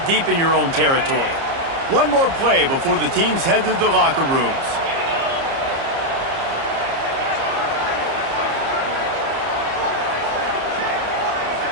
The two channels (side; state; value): left; late; 30 ms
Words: deep in your own territory. One more play before the teams head to the locker rooms.